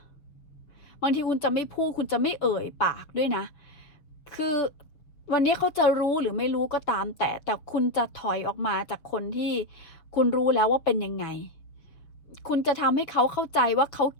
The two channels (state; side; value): late; right; 6.4 ms